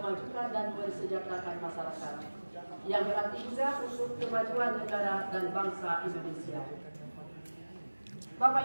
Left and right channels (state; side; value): inverted; both; correlation -1.00